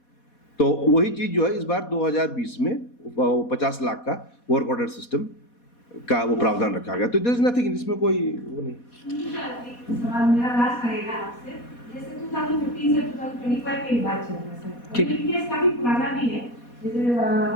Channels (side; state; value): right; late; 4.2 ms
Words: तो वही चीज़ जो है इस बार 2020 में 50 लाख का वर्क ऑर्डर सिस्टम का वो प्रावधान रखा गया। तो देयर इज नथिंग, इसमें कोई वो नहीं। सवाल मेरा लास्ट रहेगा आपसे, जैसे 2015 से 2025 की बात चल रहा है सर, ठीक। ये केस काफी पुराना भी है, जैसे